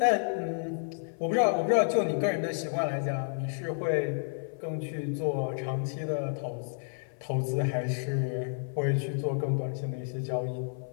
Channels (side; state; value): right; silent; 57 dB below the other